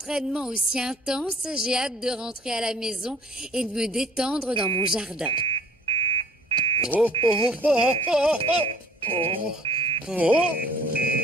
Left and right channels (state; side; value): normal; both; correlation 0.54